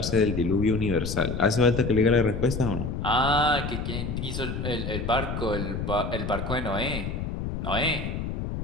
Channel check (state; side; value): noise; left; rumble, 4 dB below the sound